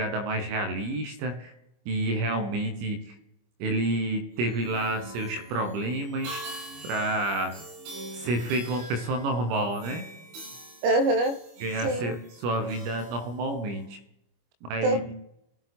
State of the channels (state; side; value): late; left; 25 ms